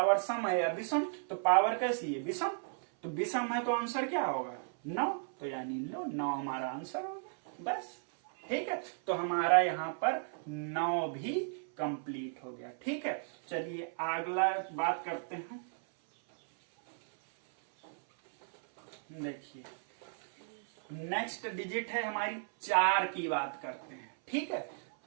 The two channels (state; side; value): silent; left; 54 dB below the other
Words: सम है या विषम? तो पावर कैसी है? विषम। तो विषम है तो आंसर क्या होगा? 9। तो यानी लो 9 हमारा आंसर होगा। बस ठीक है, तो हमारा यहाँ पर 9 भी कंप्लीट हो गया। ठीक है, चलिए अगला बात करते हैं। देखिए नेक्स्ट डिजिट है हमारी 4 की बात करते हैं। ठीक है,